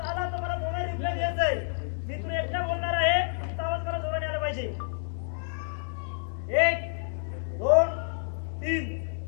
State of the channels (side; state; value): right; silent; digital silence